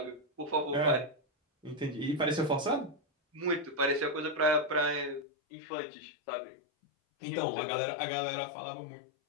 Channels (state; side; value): drops out; right; at 5.2 s